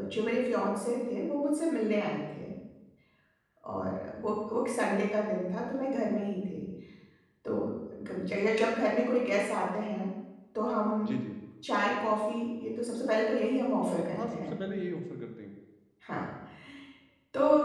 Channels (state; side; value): identical; both; correlation 1.00